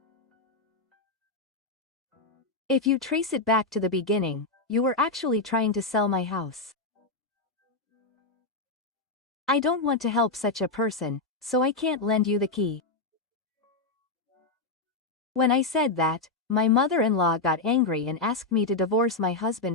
If you trace it back to the beginning, you were actually trying to sell my house. I don't want to help such a person, so I can't lend you the key. When I said that, my mother-in-law got angry and asked me to divorce my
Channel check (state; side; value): quieter; right; 3.4 dB